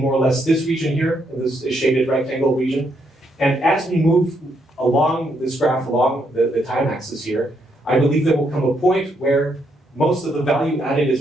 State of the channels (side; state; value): both; normal; correlation 0.76